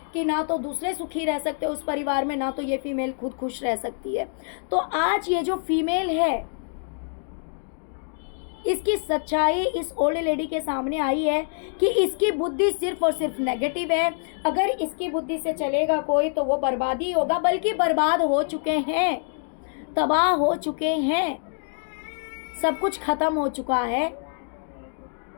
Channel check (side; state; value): right; silent; digital silence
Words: कि ना तो दूसरे सुखी रह सकते उस परिवार में, ना तो ये फीमेल खुद खुश रह सकती है। तो आज ये जो फीमेल है, इसकी सच्चाई इस ओल्ड लेडी के सामने आई है कि इसकी बुद्धि सिर्फ और सिर्फ नेगेटिव है। अगर इसकी बुद्धि से चलेगा कोई तो वो बर्बादी होगा, बल्कि बर्बाद हो चुके हैं, तबाह हो चुके हैं, सब कुछ खत्म हो चुका है।